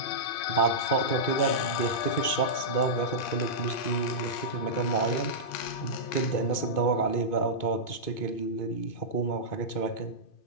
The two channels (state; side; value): late; right; 2.5 ms